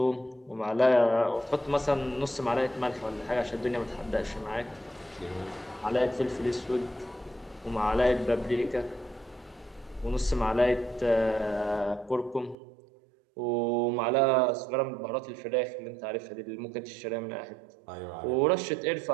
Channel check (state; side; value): drops out; left; at 12.6 s